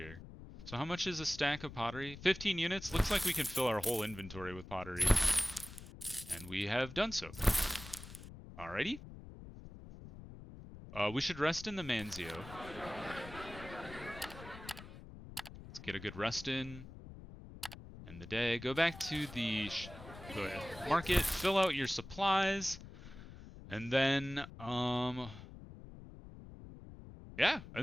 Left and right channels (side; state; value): left; noise; rumble, 14 dB below the sound